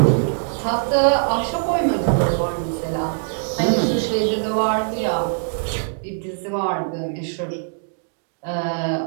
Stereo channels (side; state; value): left; silent; digital silence